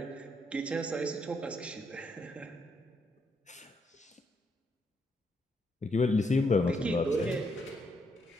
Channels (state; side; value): normal; both; correlation 0.76